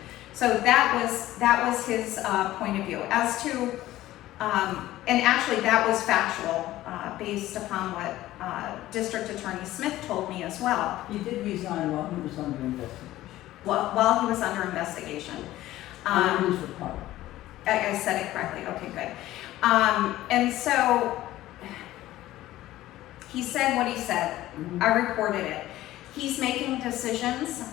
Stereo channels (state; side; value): quieter; right; 15.3 dB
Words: So that was his point of view. As to, and actually that was factual based upon what District Attorney Smith told me as well. He did resign while he was under investigation. While he was under investigation. Under his report. I said it correctly. Okay, good. And so He said what he said. Mhm. I reported it. He's making decisions